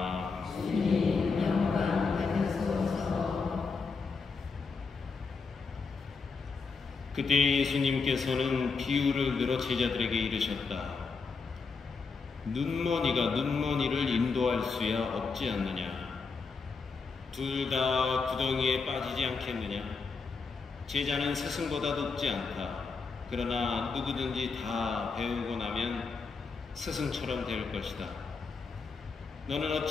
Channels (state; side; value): quieter; right; 4.7 dB